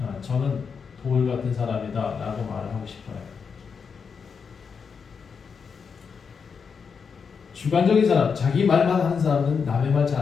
저는 돌 같은 사람이다 라고 말을 하고 싶어요. 주관적인 사람, 자기 말만 하는 사람은 남의 말 잘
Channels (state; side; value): quieter; right; 6.0 dB